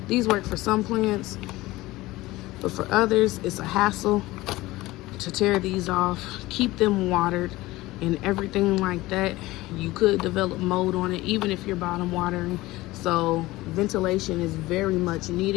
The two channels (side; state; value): right; quieter; 18.8 dB